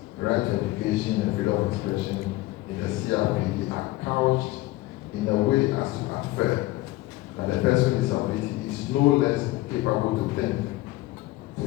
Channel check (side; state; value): right; quieter; 18.3 dB